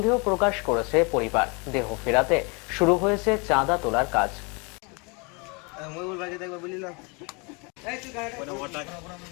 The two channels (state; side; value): quieter; right; 30.9 dB